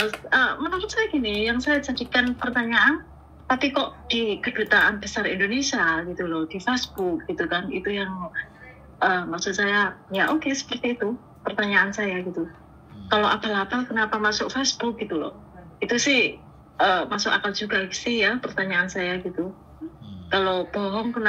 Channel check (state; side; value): identical; both; correlation 1.00